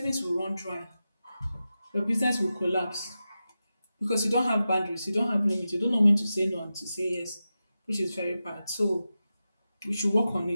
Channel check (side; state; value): both; inverted; correlation -0.92